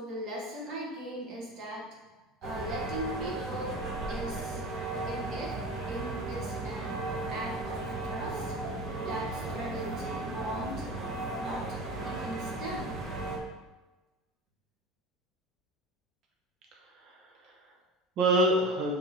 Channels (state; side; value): normal; both; correlation 0.31